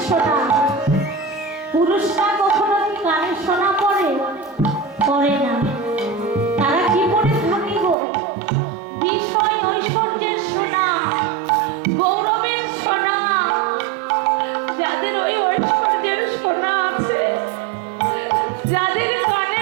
সোনা। পুরুষরা কখনো কি কানে সোনা পরে? পরে না। তারা কি পরে থাকিব? বিষয় ঐশ্বর্যের সোনা, গৌরবের সোনা। যাদের ওই ঐশ্বর্যের সোনা আছে, যাদের কানে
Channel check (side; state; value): left; drops out; at 8.0 s